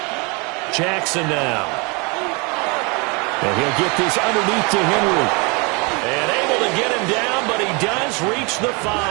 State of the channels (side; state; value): left; quieter; 29.8 dB